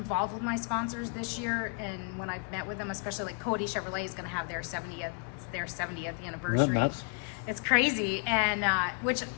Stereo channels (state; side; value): quieter; right; 35.6 dB